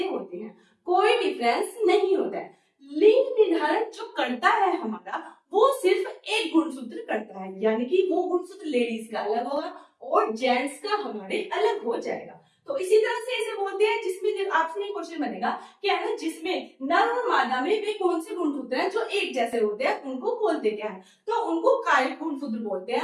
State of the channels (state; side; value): identical; both; correlation 1.00